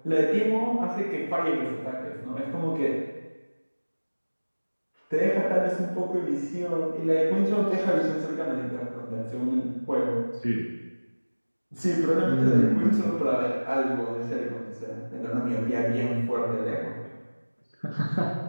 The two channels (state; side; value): inverted; both; correlation -1.00